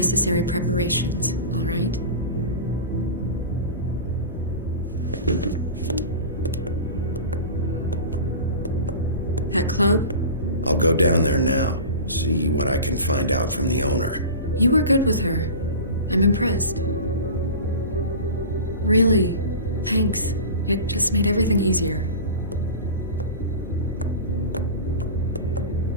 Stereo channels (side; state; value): both; inverted; correlation -0.33